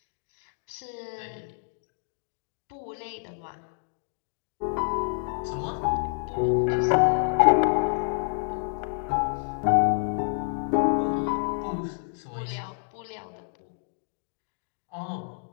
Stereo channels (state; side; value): silent; right; digital silence